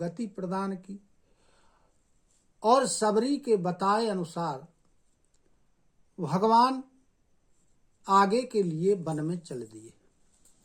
प्रदान की और सबरी के बताए अनुसार भगवान आगे के लिए वन में चल दिए।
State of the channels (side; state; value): both; identical; correlation 1.00